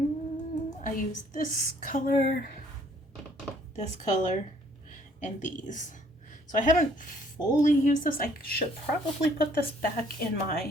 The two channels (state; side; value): normal; both; correlation 0.61